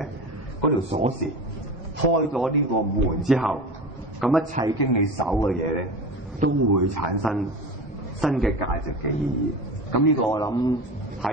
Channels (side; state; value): both; normal; correlation 0.30